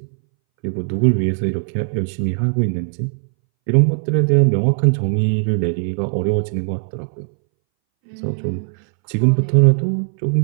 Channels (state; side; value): silent; left; 63 dB below the other